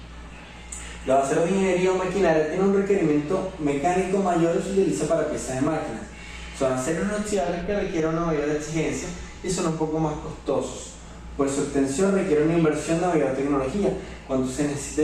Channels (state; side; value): identical; both; correlation 1.00